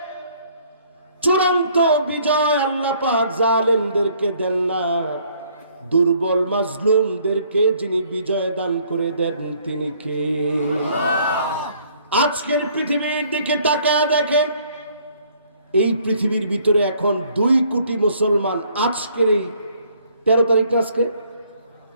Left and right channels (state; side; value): inverted; both; correlation -0.62